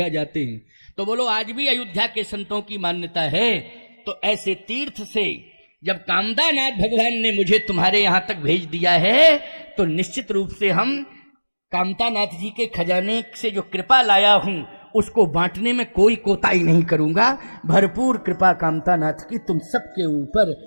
जाते हैं। तो बोलो आज भी अयोध्या के संतों की मान्यता है। तो ऐसे तीर्थ से जब कामदानाथ भगवान ने मुझे तुम्हारे यहां तक भेज दिया है, तो निश्चित रूप से हम कामतानाथ जी के खजाने से जो कृपा लाया हूं उसको बांटने में कोई कोताही नहीं करूंगा। भरपूर कृपा कामतानाथ की तुम सबके ऊपर,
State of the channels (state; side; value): inverted; both; correlation -1.00